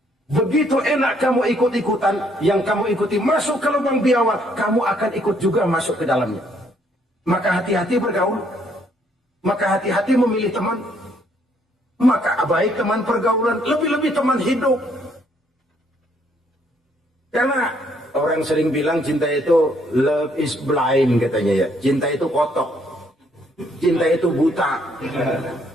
Begitu enak kamu ikut-ikutan, yang kamu ikuti masuk ke lubang biawak, kamu akan ikut juga masuk ke dalamnya. Maka hati-hati bergaul. Maka hati-hati memilih teman. Maka baik teman pergaulan, lebih-lebih teman hidup. Karena orang sering bilang cinta itu love is blind katanya ya. Cinta itu kotok. Cinta itu buta.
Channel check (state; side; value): normal; both; correlation 0.68